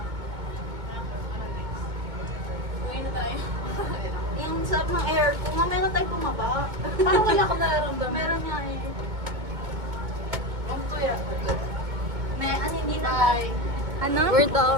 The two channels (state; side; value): late; left; 2.2 ms